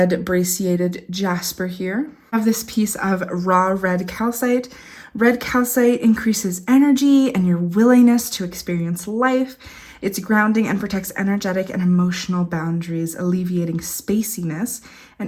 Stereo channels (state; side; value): identical; both; correlation 1.00